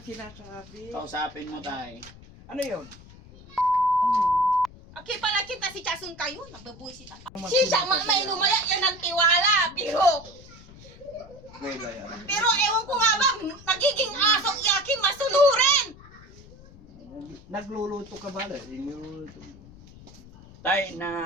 sinasabi? Kausapin mo tay. Ano yun? Okay pala kita si Chasun kayo, nagbabuisit ako. Siya, mainumaya, yan ang tiwala, pero ewan ko nga ba, nagiging asong iyakin masulurin. Nagluluto ka ba? Nagluluto. Tay,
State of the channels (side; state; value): left; noise; rumble, 20 dB below the sound